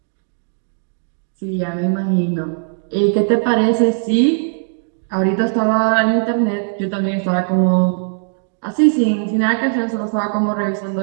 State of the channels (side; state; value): left; silent; digital silence